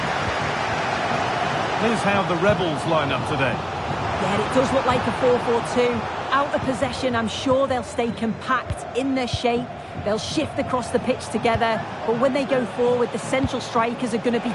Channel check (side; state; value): both; identical; correlation 1.00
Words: Here's how the Rebels line up today. Yeah, it does look like a 4-4-2. Out of possession, I'm sure they'll stay compact in their shape. They'll shift across the pitch together, but when they go forward, the central strikers are going to be